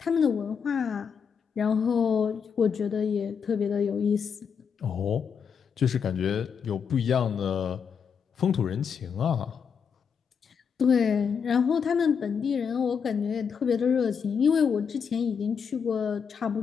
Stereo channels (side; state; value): right; quieter; 6.7 dB